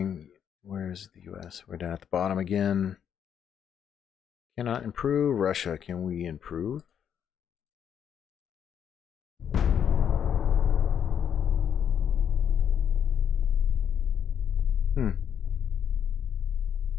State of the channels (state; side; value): quieter; right; 8.5 dB